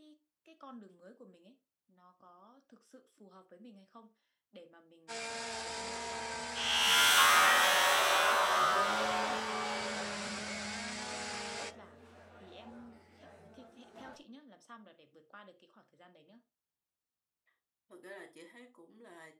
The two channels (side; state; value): both; identical; correlation 1.00